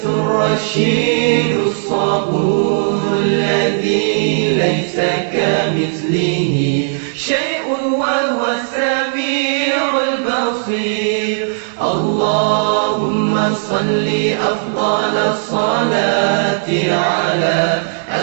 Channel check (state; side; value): silent; left; digital silence